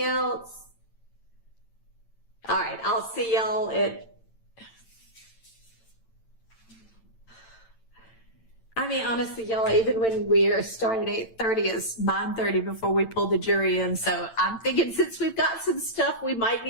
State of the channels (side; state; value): right; late; 8.9 ms